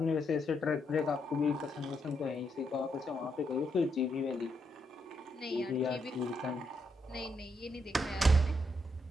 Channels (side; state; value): both; normal; correlation 0.79